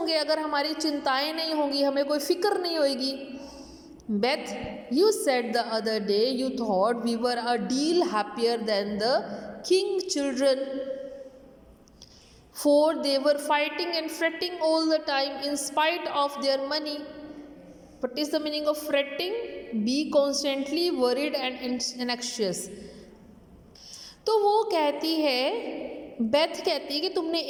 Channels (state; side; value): identical; both; correlation 1.00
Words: अगर हमारी चिंताएं नहीं होंगी, हमें कोई फिक्र नहीं होगी। Beth you said the other day you thought we were a deal happier than the King children for they were fighting and fretting all the time in spite of their money. What is the meaning of fretting? Be constantly worried and anxious. तो वो कहती है, Beth कहती है कि तुमने